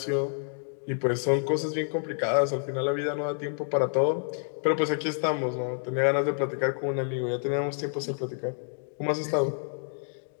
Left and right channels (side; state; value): right; silent; digital silence